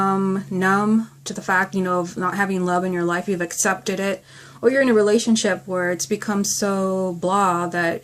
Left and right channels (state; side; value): identical; both; correlation 1.00